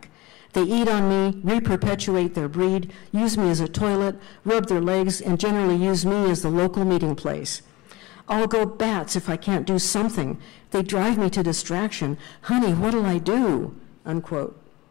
They eat on me, reperpetuate their breed, use me as a toilet, rub their legs, and generally use me as the local meeting place. I'll go bats if I can't do something. They drive me to distraction. Honey, what'll I do? Unquote.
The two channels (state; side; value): quieter; right; 20.9 dB